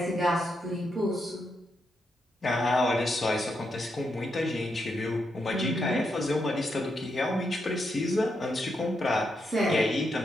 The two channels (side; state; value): both; normal; correlation 0.82